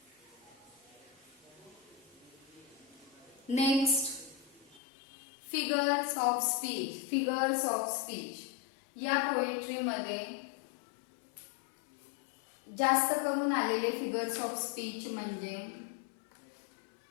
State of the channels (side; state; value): right; drops out; at 4.8 s